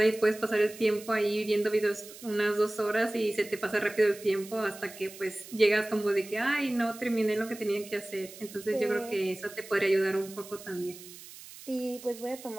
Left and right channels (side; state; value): right; noise; hiss, 17 dB below the sound